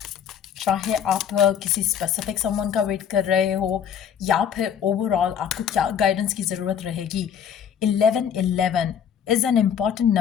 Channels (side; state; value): right; quieter; 8.3 dB